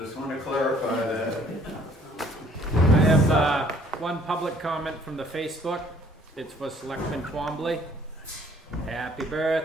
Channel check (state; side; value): normal; both; correlation 0.59